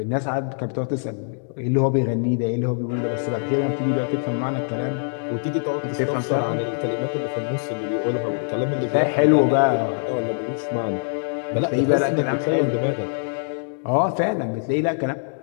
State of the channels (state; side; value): silent; right; 63 dB below the other